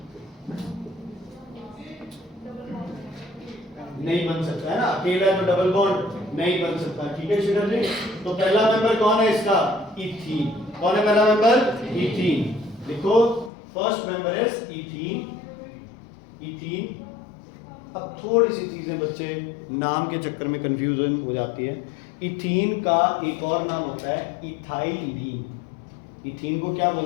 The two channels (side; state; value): right; drops out; at 13.5 s